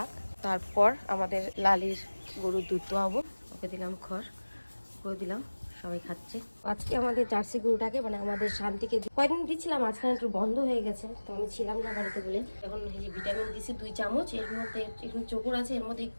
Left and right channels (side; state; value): both; inverted; correlation -1.00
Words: তারপর আমাদের লালির গরুর দুধ দোয়াবো। ওকে দিলাম খড়, ওকে দিলাম, সবাই খাচ্ছে। আজকে আমাদের জার্সি গরুটাকে মানে আমাদের শান্তিকে কয়েকদিন দিচ্ছিলাম, আজকাল একটু বন্ধ হয়ে গেছে, তো আমি ছিলাম না বাড়িতে বলে। এখন এই যে ভিটামিন দিছি 2 চামচ, এর মধ্যে একটু চোকর আছে, এর মধ্যে